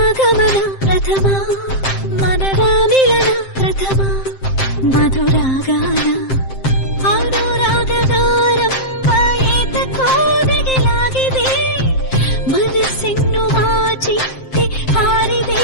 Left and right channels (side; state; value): right; late; 7.6 ms